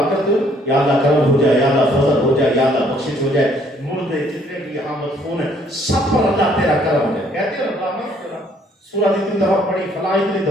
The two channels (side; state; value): both; normal; correlation 0.64